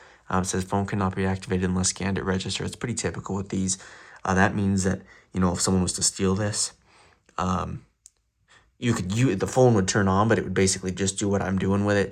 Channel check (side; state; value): both; identical; correlation 1.00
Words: It says phone cannot be activated unless scanned at register. It's pretty typical with these. That means that, if someone was to steal this, the phone would turn on, but it would basically just do what I'm doing with it,